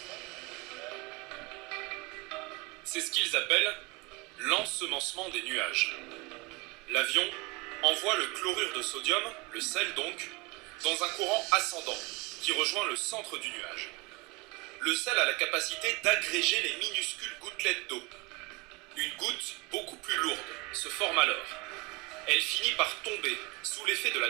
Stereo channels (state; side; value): quieter; left; 24.7 dB